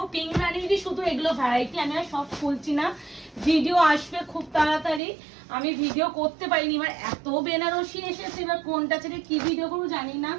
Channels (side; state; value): left; drops out; at 5.0 s